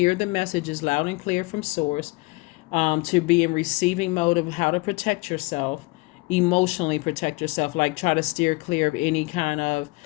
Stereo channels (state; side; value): quieter; right; 24.9 dB